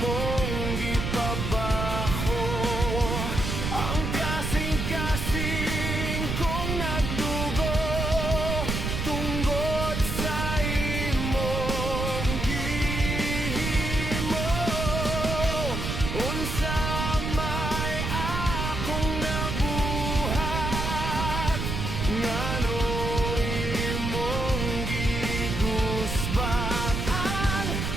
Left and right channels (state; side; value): noise; right; rumble, 2 dB below the sound